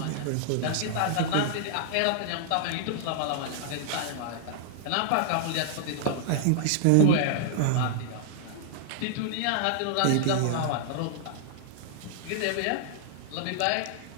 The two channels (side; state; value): both; different; correlation -0.01